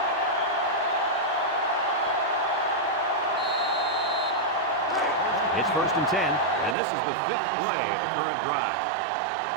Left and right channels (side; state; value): left; drops out; at 6.8 s